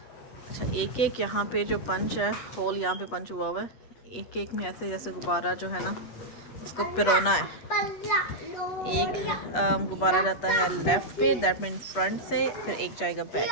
अच्छा एक एक यहाँ पे जो पंच है, होल यहाँ पे पंच हुआ हुआ है। एक एक में ऐसे जैसे गुब्बारा जो है ना उसको पिरोना है। एक गुब्बारा जाता है लेफ्ट पे, दैट मीन फ्रंट से, फिर एक जाएगा बैक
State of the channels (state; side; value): late; right; 8.3 ms